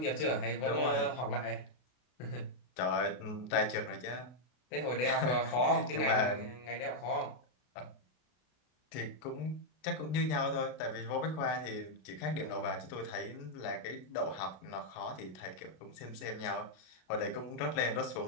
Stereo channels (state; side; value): late; right; 32 ms